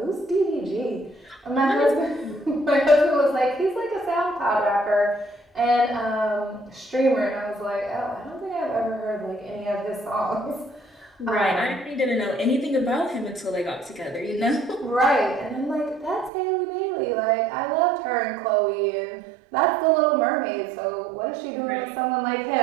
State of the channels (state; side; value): drops out; left; at 16.3 s